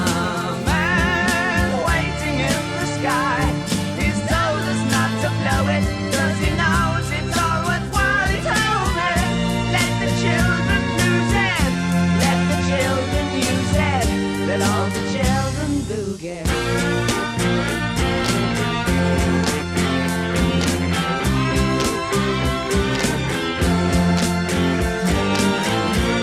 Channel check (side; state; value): both; identical; correlation 1.00